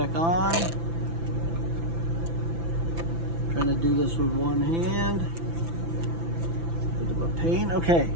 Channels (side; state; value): left; late; 5.9 ms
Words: on. Trying to do this with one hand. Bit of a pain. Okay,